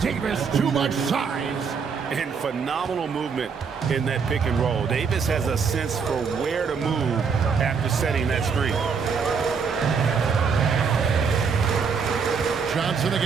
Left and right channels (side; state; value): left; quieter; 5.8 dB